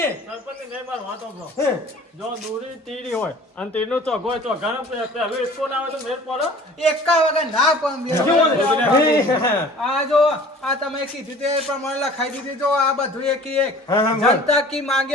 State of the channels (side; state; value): both; normal; correlation 0.47